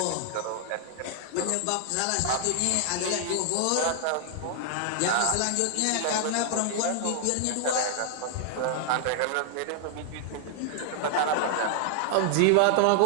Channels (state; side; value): different; both; correlation 0.00